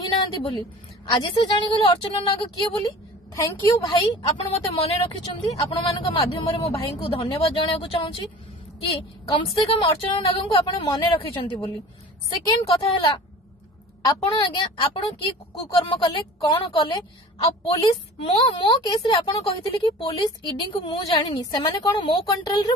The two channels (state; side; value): normal; both; correlation 0.41